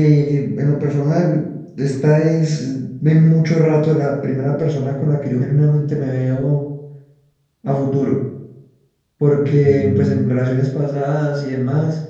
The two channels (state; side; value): identical; both; correlation 1.00